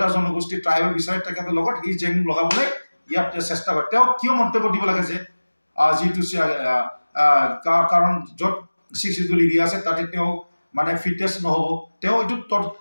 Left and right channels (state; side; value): inverted; both; correlation -1.00